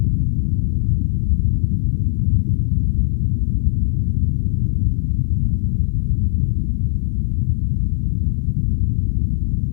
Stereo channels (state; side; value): silent; right; digital silence